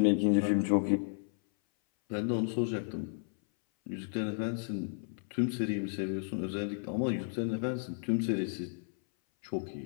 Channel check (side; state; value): right; silent; 56 dB below the other